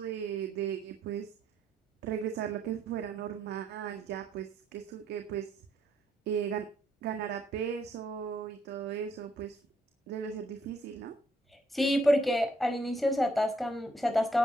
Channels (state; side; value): normal; both; correlation 0.70